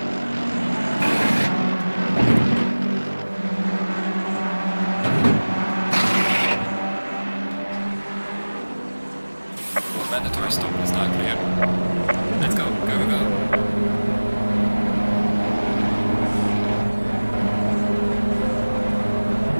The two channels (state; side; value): inverted; both; correlation -1.00